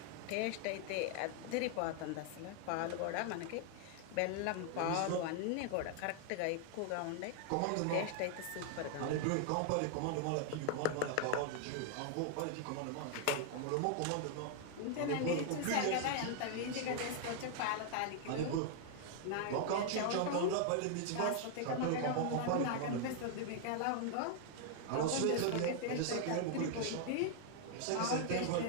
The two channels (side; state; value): both; different; correlation 0.00